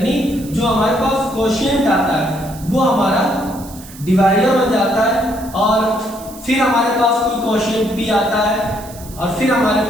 जो हमारे पास कोशेंट आता है वो हमारा डिवाइडर बन जाता है, और फिर हमारे पास कोई कोशेंट P आता है और फिर हमारे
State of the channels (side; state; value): right; noise; hiss, 18 dB below the sound